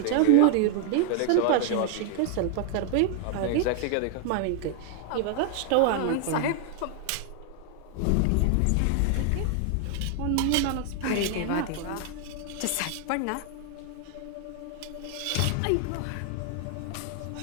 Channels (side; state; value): both; different; correlation 0.00